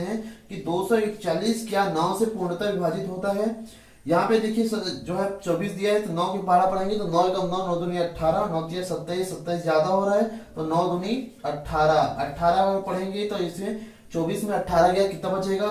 कि 241 क्या 9 से पूर्णतः विभाजित होता है। यहाँ पे देखिए जो है 24 दिया है, तो 9 के पहाड़ा पढ़ेंगे तो 9 एकम 9, 9 दूनी 18, 9 तिया 27, 27 ज्यादा हो रहा है तो 9 दूनी 18, 18 पढ़ेंगे तो इसमें 24 में 18 गया, कितना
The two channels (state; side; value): identical; both; correlation 1.00